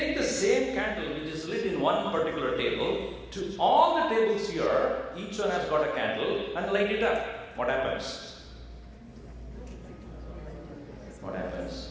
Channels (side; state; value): both; identical; correlation 1.00